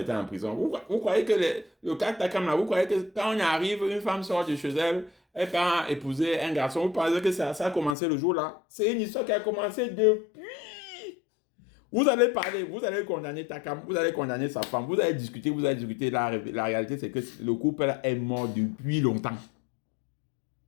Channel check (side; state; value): right; drops out; at 8.0 s